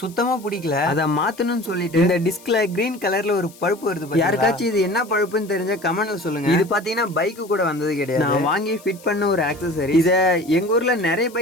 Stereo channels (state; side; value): noise; left; hiss, 23 dB below the sound